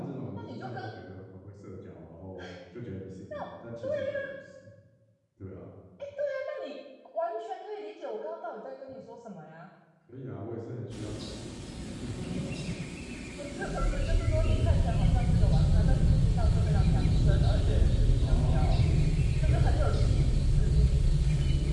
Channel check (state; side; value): identical; both; correlation 1.00